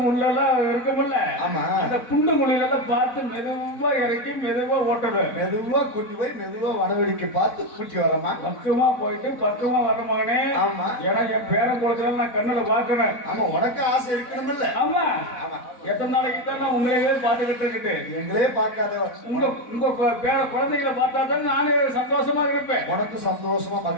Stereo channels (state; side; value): late; right; 4.1 ms